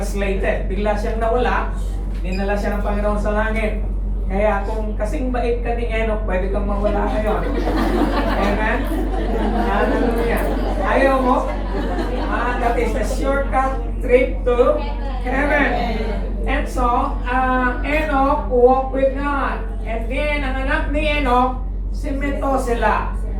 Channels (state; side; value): identical; both; correlation 1.00